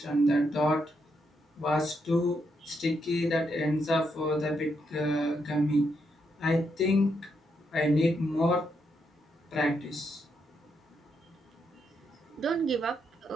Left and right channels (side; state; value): both; normal; correlation 0.79